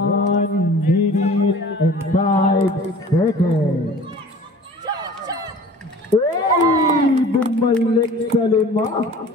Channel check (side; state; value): both; normal; correlation 0.45